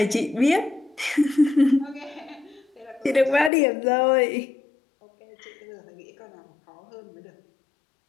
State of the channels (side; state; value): right; drops out; at 3.5 s